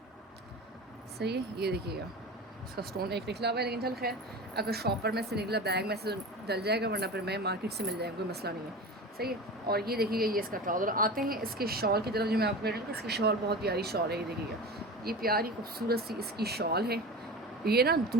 सही है, ये देखिएगा इसका स्टोन एक निकला हुआ है, लेकिन चल खैर अगर शॉपर में से निकला बैग में से डल जाएगा, वरना फिर मैं मार्केट से मिल जाएगा, कोई मसला नहीं है। सही है। और ये देखिएगा ये इसका ट्राउज़र। आते हैं इसके शॉल की तरफ, जो मैं आपको कह रही हूँ इसकी शॉल बहुत प्यारी शॉल है। ये देखिएगा ये प्यारी खूबसूरत सी इसकी शॉल है। ये ना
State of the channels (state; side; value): normal; both; correlation 0.31